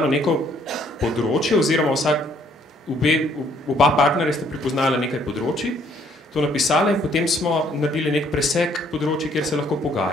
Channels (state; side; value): normal; both; correlation 0.65